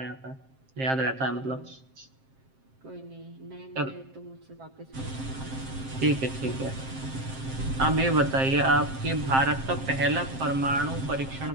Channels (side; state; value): left; late; 7.6 ms